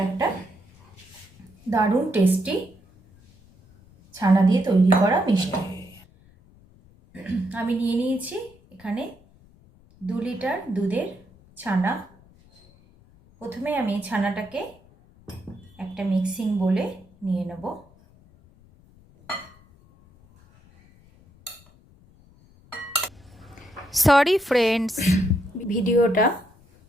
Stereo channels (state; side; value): noise; left; rumble, 28 dB below the sound